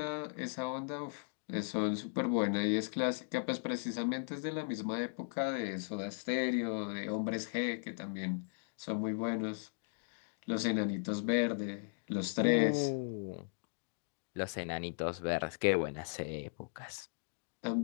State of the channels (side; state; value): right; silent; digital silence